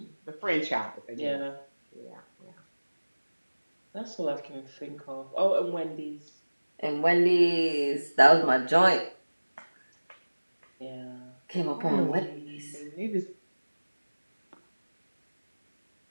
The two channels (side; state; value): both; inverted; correlation -1.00